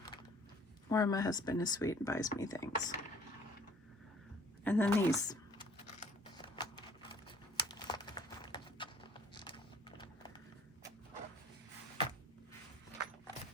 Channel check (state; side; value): normal; both; correlation 0.55